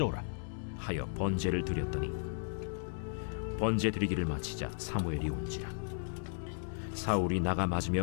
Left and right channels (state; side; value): silent; right; digital silence